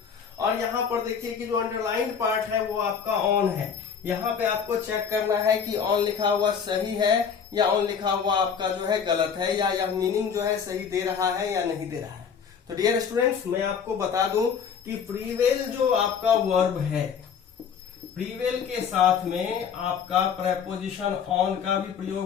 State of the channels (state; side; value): quieter; right; 6.9 dB